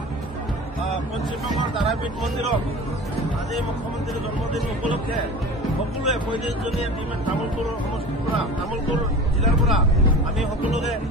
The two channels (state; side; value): normal; both; correlation 0.37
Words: পশ্চিমবংগৰ তাৰাপীঠ মন্দিৰত আজি মুখ্যমন্ত্ৰীৰ জন্মদিন উপলক্ষে সকলোৱে 35জনীয়া টীমে তামুলপুৰ সমষ্টিৰ পৰা তামুলপুৰ জিলাৰ পৰা আমি সকলোকে